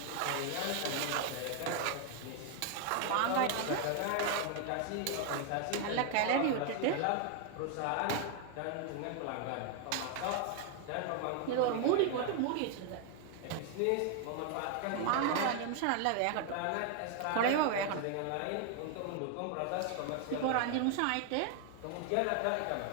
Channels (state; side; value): different; both; correlation 0.00